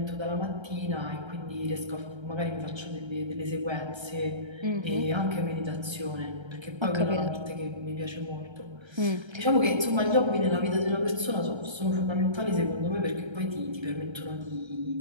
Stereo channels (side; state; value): left; late; 1.3 ms